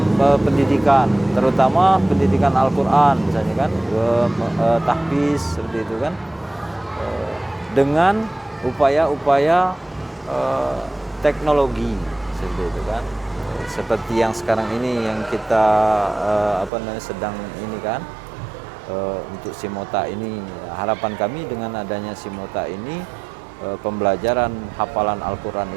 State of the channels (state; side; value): drops out; left; at 16.7 s